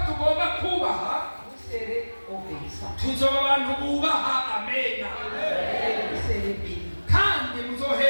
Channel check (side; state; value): both; inverted; correlation -1.00